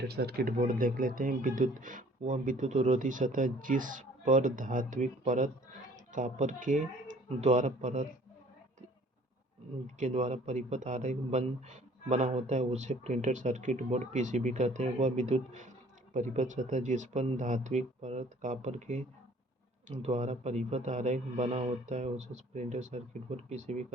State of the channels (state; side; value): normal; both; correlation 0.54